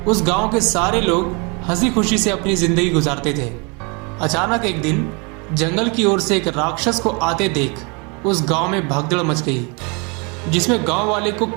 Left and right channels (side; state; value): left; quieter; 31.5 dB